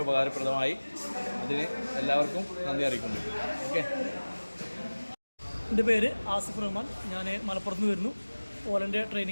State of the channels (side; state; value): both; inverted; correlation -1.00